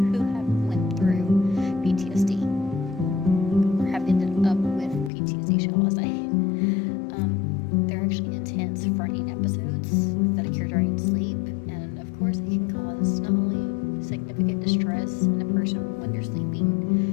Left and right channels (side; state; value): right; drops out; at 5.1 s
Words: have went through PTSD or have ended up with PTSD, shall I say. They're actually intense, frightening episodes that occur during sleep, and of course it can cause not only significant distress in a person when they're